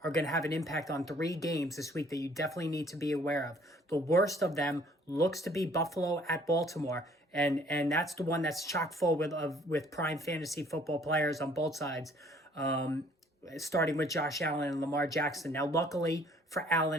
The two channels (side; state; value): both; normal; correlation 0.58